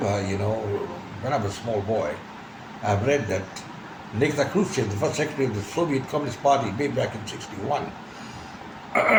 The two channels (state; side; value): identical; both; correlation 1.00